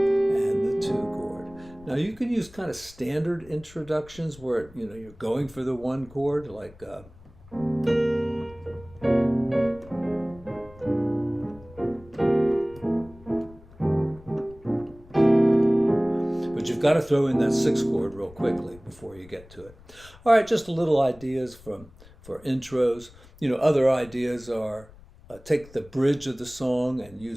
2 chord. Now you can use kind of standard introductions where you're going for the 1 chord, like but you've got to throw in that 6 chord real quickly before you get to it. All right, just a little ideas for intros. Other ideas are take the bridge of the song and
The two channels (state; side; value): noise; left; rumble, 23 dB below the sound